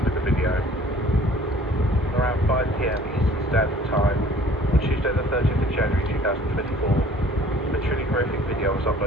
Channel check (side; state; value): both; normal; correlation 0.52